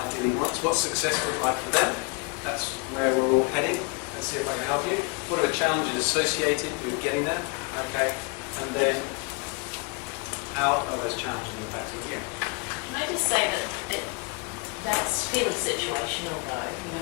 wants, what success would like for them. That's where we're all heading. Let's see if I can help you. What are the challenges associated with getting there? Okay, and then how are those challenges impacting you? Can I just say that that's fairly situational though, you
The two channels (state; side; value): quieter; right; 32.0 dB